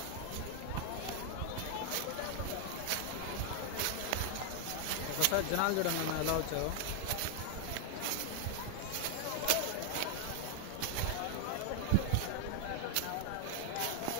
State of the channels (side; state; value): both; different; correlation 0.00